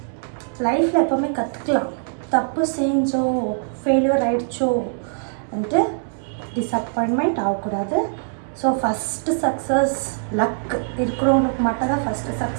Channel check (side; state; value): left; silent; digital silence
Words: லைஃப்பில் எப்போவுமே கற்றுக்கலாம். தப்பு செஞ்சோ ஃபெயிலியர் ஆகிடுச்சோ வந்துட்டு டிஸப்பாயின்மெண்ட் ஆகக்கூடாது. ஸோ ஃபஸ்ட்டு சக்ஸஸ் லக் இருக்கிறவங்களுக்கு மட்டும் தான் ஃபஸ்ட்டு